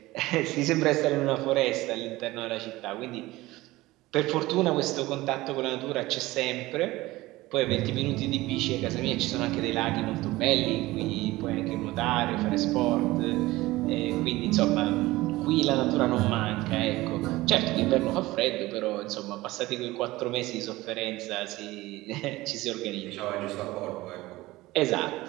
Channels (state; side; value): quieter; left; 18.8 dB